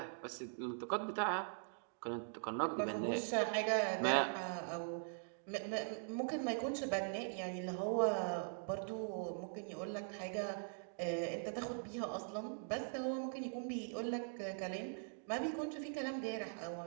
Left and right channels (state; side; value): silent; left; digital silence